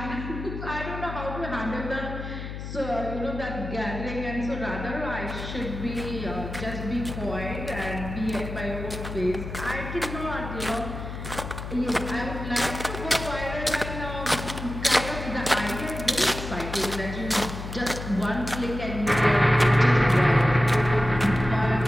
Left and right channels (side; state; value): left; noise; hum, 8 dB below the sound